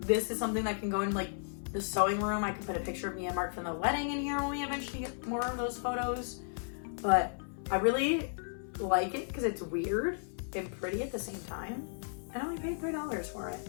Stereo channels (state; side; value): silent; right; 55 dB below the other